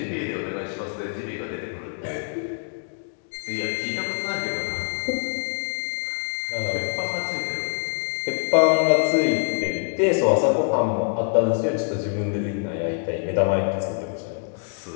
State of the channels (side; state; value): right; silent; 62 dB below the other